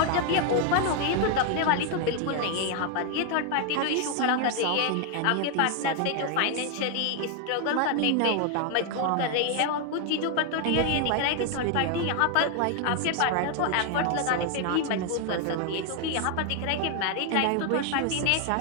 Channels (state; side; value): different; both; correlation 0.00